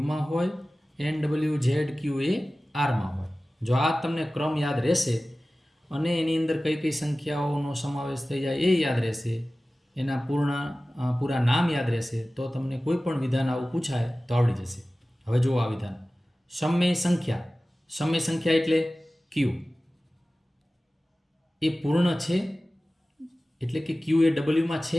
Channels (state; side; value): normal; both; correlation 0.96